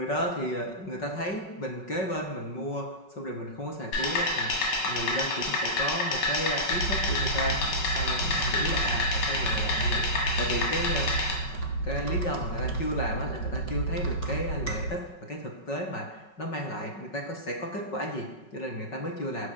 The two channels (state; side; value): late; right; 5.4 ms